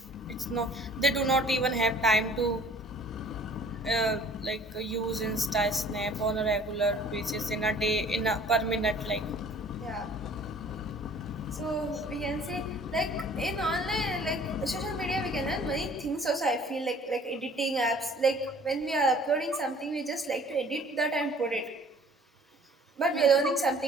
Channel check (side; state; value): both; normal; correlation 0.52